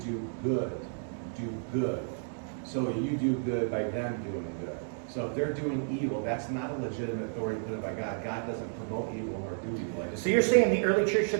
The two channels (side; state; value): left; silent; digital silence